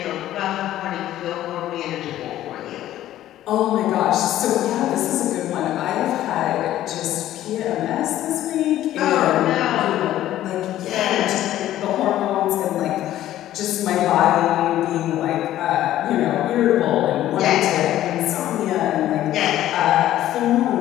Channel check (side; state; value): right; quieter; 13.3 dB